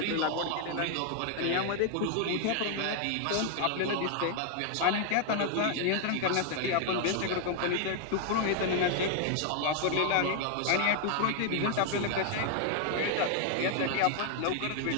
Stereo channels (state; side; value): different; both; correlation 0.00